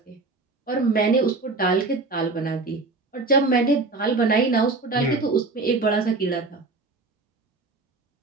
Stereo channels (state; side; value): quieter; left; 3.5 dB